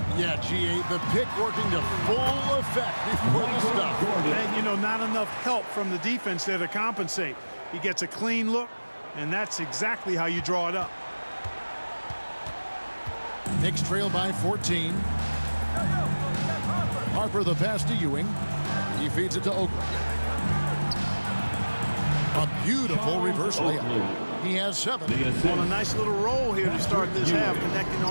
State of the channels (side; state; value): both; inverted; correlation -1.00